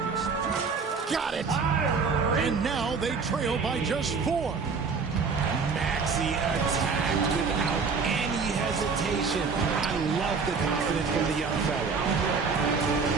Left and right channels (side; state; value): left; quieter; 5.1 dB